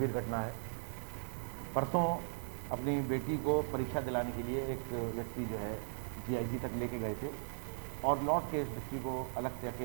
घटना है। परसों अपनी बेटी को परीक्षा दिलाने के लिए एक व्यक्ति जो है GIC तक लेके गए थे और लौट के इस व्यक्ति को अलग से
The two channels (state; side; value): silent; left; 52 dB below the other